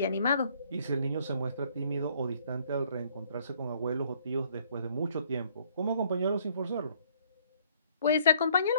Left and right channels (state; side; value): inverted; both; correlation -0.63